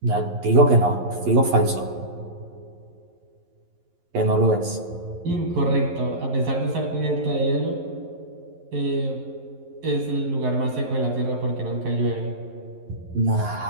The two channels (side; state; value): left; late; 11 ms